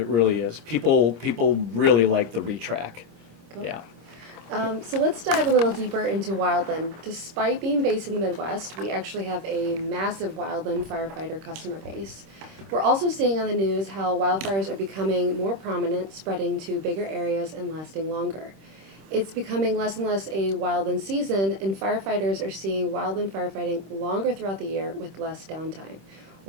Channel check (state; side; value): late; left; 26 ms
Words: really is. People really like the Retract. Cool. Yeah. So let's dive a little deeper into Wildland. Despite being based in the Midwest, we actually have a massive Wildland firefighter customer base. We're also seeing on the news how wildfires are becoming more prominent, spreading to bigger areas and lasting longer. It's becoming less and less a wildland season, and firefighters are seeing wildland firefighting longer throughout the year with less downtime.